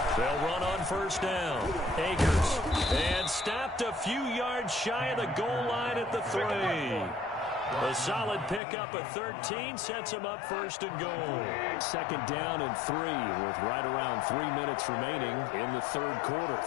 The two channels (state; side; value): drops out; right; at 8.6 s